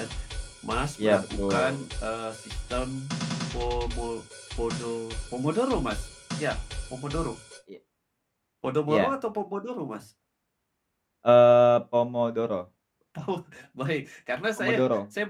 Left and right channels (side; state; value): both; identical; correlation 1.00